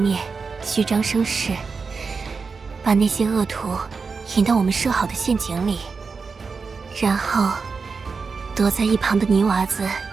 虚张声势，把那些恶徒引到我们设好的陷阱里，然后躲在一旁的泥娃子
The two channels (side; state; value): left; quieter; 4.9 dB